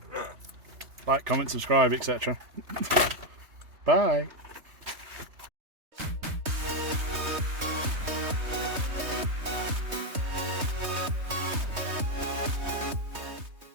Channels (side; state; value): left; late; 3.2 ms